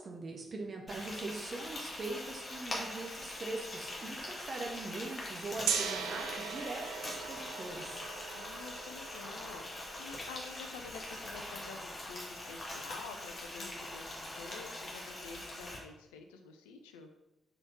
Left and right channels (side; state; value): both; normal; correlation 0.73